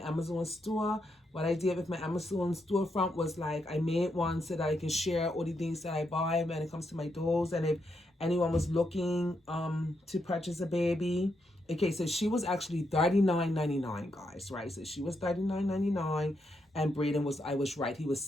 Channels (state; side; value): normal; both; correlation 0.81